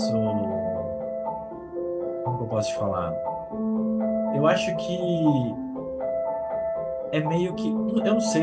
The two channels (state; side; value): identical; both; correlation 1.00